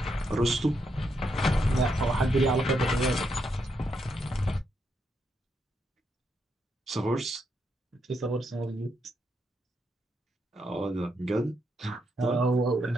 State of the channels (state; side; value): normal; both; correlation 0.80